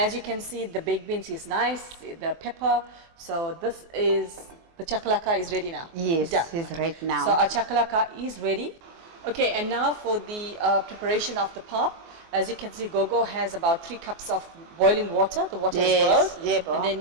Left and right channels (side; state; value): left; late; 24 ms